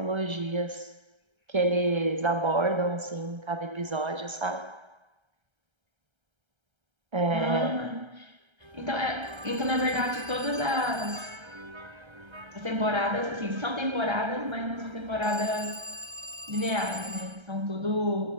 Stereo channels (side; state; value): left; late; 1.3 ms